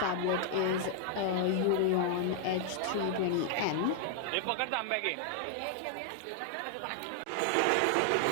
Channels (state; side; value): different; both; correlation 0.00